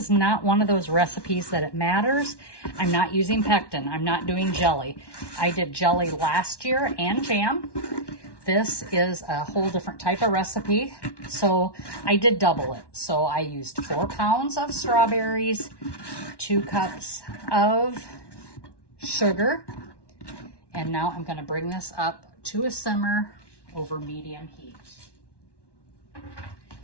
not one of those recipes that it matters. I'm not using pectin. I'm not doing jelly. I did jelly last year and jam. This is a whole different type of recipe. So I did double it. So I used 4 pounds of strawberries, 2 cups of sugar, and now I'm going to bring this up to a simmer over medium heat.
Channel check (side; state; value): right; late; 1.1 ms